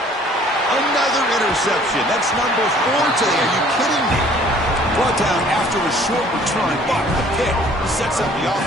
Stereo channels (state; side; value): normal; both; correlation 0.55